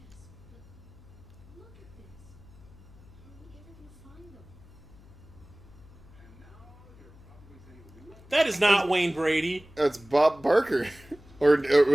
That is not Wayne Brady. It's Bob Barker. Or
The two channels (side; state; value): left; noise; hum, 22 dB below the sound